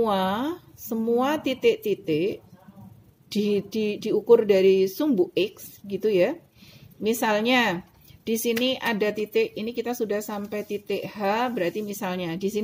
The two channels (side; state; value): both; identical; correlation 1.00